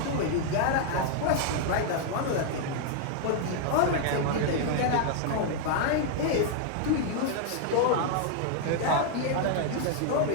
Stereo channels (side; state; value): both; different; correlation 0.00